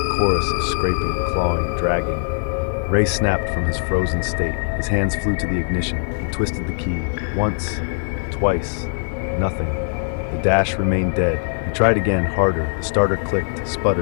chorus of scraping, clawing, dragging. Ray snapped from his frozen state. His hands flew to the ignition. He twisted the key. Once, twice, nothing. The dash remained dead. He tried again, harder. The starter clicked,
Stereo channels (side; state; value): right; silent; digital silence